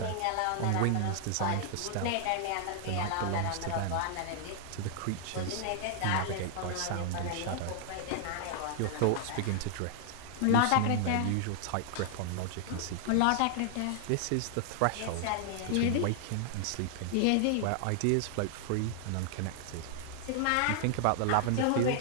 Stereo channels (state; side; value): different; both; correlation 0.00